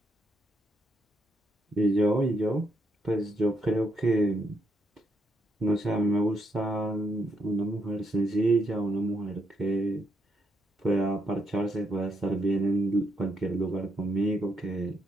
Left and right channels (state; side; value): normal; both; correlation 0.77